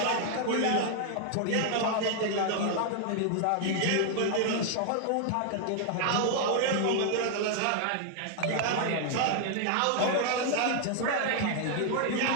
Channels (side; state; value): both; different; correlation 0.00